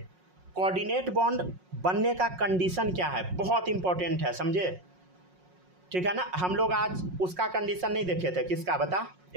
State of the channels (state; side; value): late; left; 5.5 ms